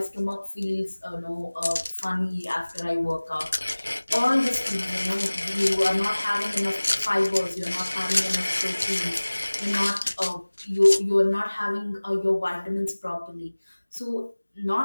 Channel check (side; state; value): both; inverted; correlation -1.00